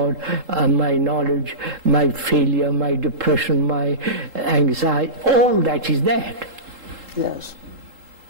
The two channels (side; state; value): left; late; 3.7 ms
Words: knowledge, my failure, my depression, my anxiety, all that is that. Yes.